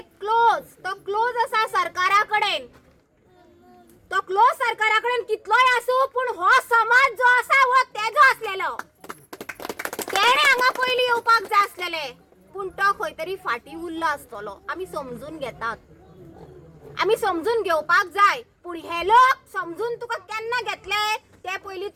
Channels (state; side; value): identical; both; correlation 1.00